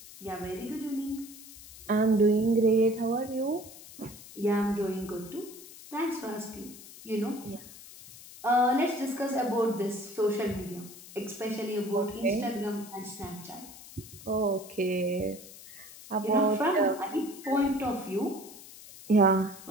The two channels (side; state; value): left; noise; hiss, 17 dB below the sound